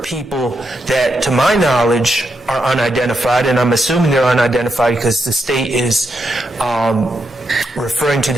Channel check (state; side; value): normal; both; correlation 0.83